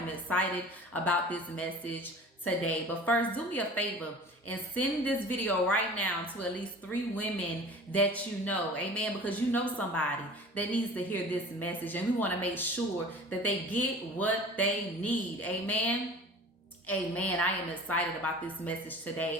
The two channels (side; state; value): both; normal; correlation 0.42